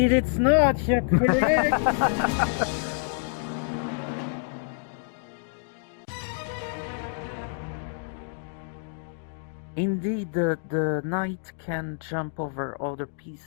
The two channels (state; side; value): silent; right; digital silence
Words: it's not, you're correct! Indeed, the knight can jump over other